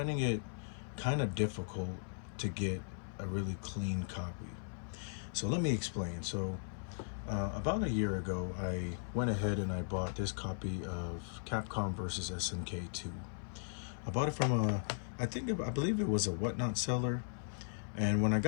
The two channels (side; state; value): right; silent; 53 dB below the other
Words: it kind of difficult to get a really clean copy. So let me explain. So about a year ago, I went ahead and I bought this copy of Capcom versus SNK 2. I bought it from I believe it was a Whatnot seller. And when I